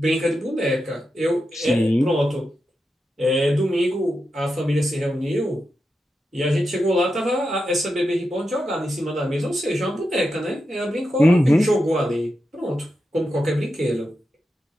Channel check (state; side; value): normal; both; correlation 0.88